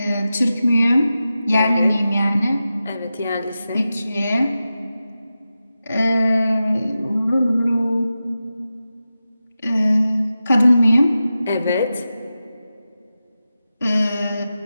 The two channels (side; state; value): both; inverted; correlation -0.92